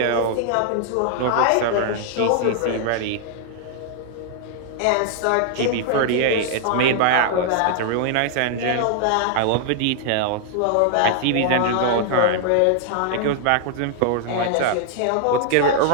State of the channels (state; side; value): different; both; correlation -0.01